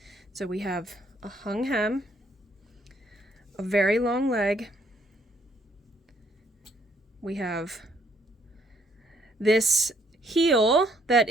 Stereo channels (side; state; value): both; normal; correlation 0.67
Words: So we have a hung hem, a very long leg. We have this heel that